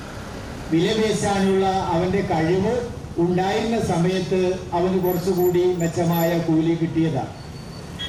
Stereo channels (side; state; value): both; identical; correlation 1.00